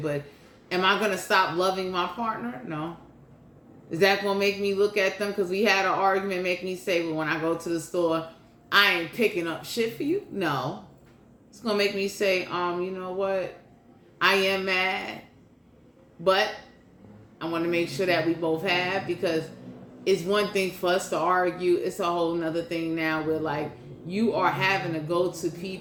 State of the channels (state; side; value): identical; both; correlation 1.00